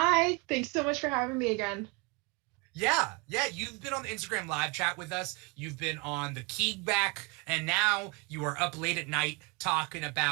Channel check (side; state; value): left; quieter; 28.1 dB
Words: thanks so much for having me again. Yeah, you've been on the Instagram live chat with us. You've been on the Keeg back, and now you are up late at night talking